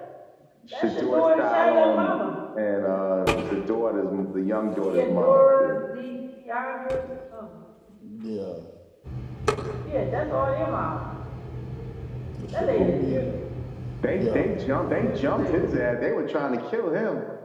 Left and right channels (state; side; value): identical; both; correlation 1.00